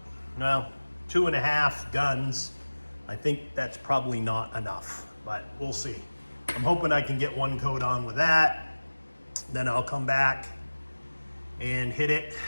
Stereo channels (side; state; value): both; inverted; correlation -1.00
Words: 2.5 guns. I think that's probably not enough, but we'll see. I'm hoping I can get one coat on with that. Then I'll come back and hit it,